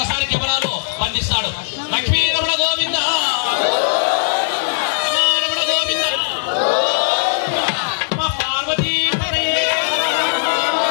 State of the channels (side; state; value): right; silent; digital silence